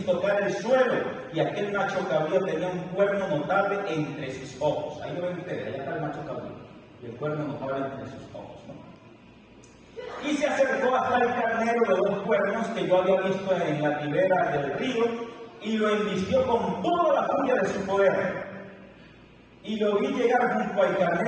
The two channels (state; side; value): identical; both; correlation 1.00